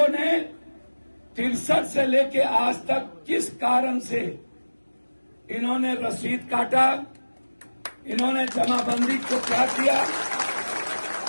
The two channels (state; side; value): inverted; both; correlation -1.00